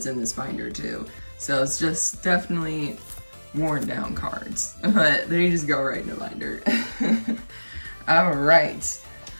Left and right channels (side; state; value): both; inverted; correlation -1.00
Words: in this binder too. So it's just definitely worn down cards, but they just go right in the binder. All right.